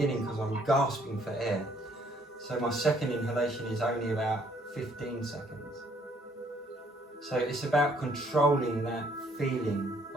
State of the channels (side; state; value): both; normal; correlation 0.64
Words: because I'm gasping for air. So my second inhalation is only about 15 seconds. So it's about controlling that feeling